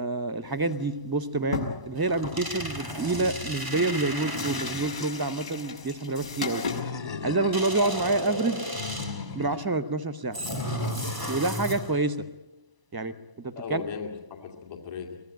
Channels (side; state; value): left; late; 1.0 ms